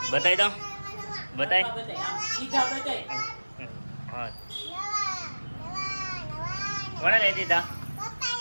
બતાવી દો, બતાય. હા, કોણે લઈ દીધા?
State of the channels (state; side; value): inverted; both; correlation -1.00